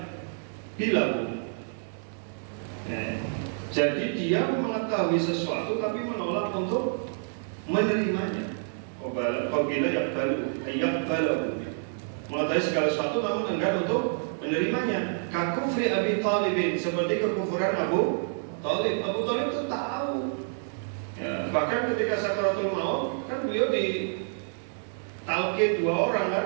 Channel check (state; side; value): silent; left; digital silence